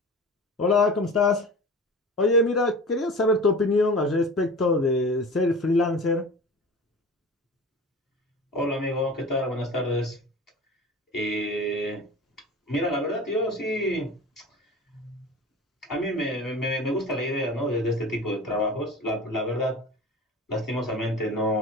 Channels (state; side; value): normal; both; correlation 0.36